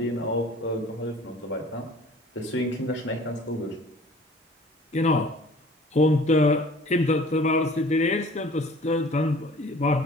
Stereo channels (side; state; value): both; normal; correlation 0.49